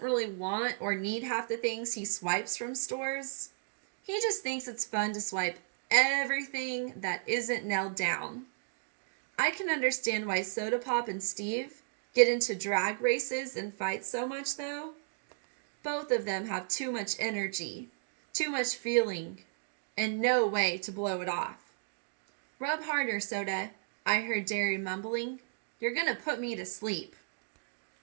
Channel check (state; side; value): silent; left; digital silence